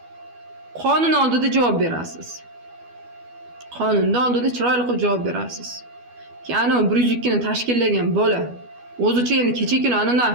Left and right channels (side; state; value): left; late; 12 ms